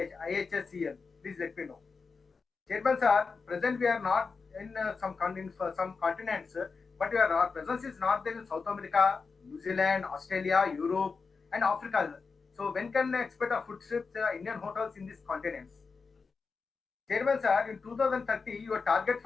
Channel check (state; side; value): quieter; right; 4.8 dB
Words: Please let me know. Chairman, sir, present we are not in some continents, but our presence is not there in South America, New Zealand, Australia, Europe, and Africa. So when can I expect a footsteps Indian hotels in these continents? Chairman, sir, in 2030, your target